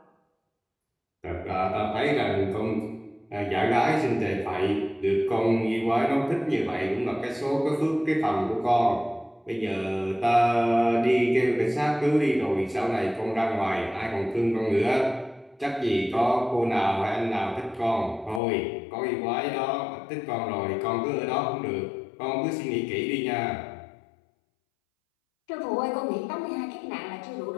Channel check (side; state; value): right; drops out; at 18.4 s